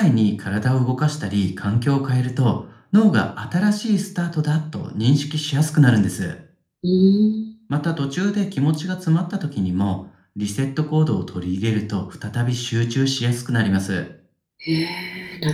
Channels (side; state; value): both; identical; correlation 1.00